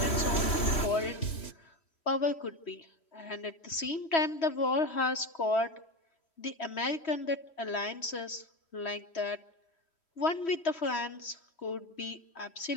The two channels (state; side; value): late; right; 3.1 ms